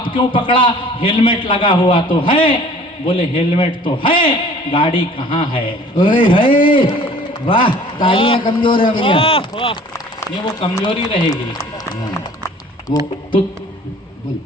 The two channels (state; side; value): normal; both; correlation 0.49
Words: क्यों पकड़ा? हेलमेट लगा हुआ तो है। बोले हेलमेट तो है, गाड़ी कहाँ है? ओए है। वाह, तालियां कमजोर है भैया। ये वो कमजोरी रहेगी, वो तो